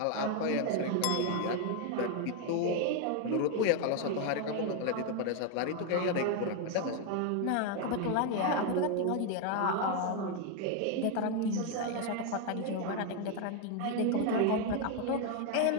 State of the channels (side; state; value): both; different; correlation 0.01